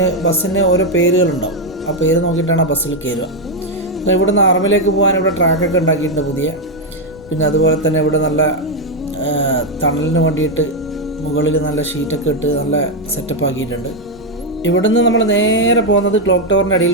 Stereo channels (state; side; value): noise; left; rumble, 23 dB below the sound